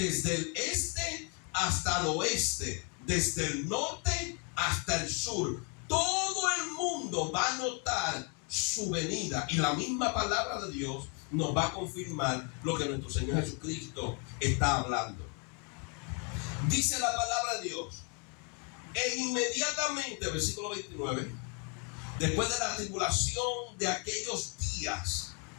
el este hasta el oeste, desde el norte hasta el sur. Todo el mundo va a notar su venida, y la misma palabra de Dios nos va a confirmar lo que nuestro Señor Jesucristo está hablando. Dice la palabra de Dios, e inmediatamente, versículo 29, después de la tribulación de aquellos días,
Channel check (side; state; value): right; quieter; 34.4 dB